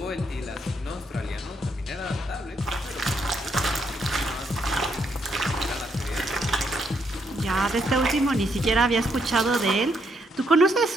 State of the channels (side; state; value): both; normal; correlation 0.75